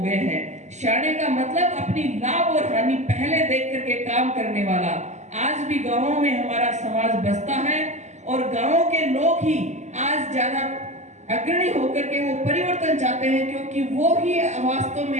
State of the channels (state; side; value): late; left; 0.34 ms